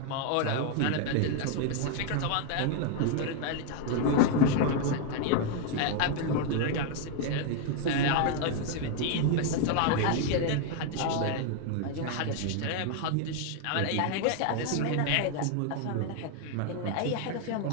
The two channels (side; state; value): both; different; correlation 0.00